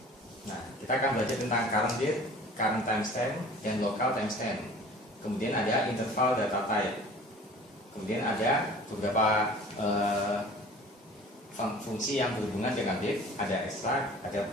Nah, kita akan belajar tentang current date, current timestamp, dan local timestamp. Kemudian ada interval data type. Kemudian ada beberapa fungsi yang berhubungan dengan date, ada extract, ada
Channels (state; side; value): normal; both; correlation 0.45